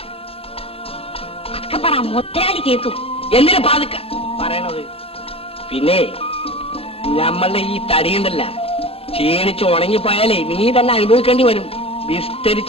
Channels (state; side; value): late; right; 0.28 ms